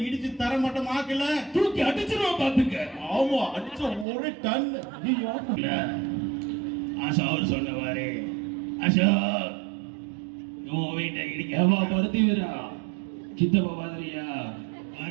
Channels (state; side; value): drops out; left; at 4.0 s